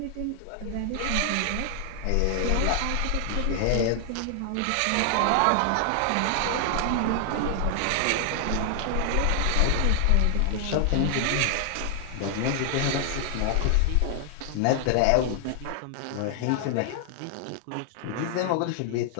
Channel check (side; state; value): both; different; correlation 0.00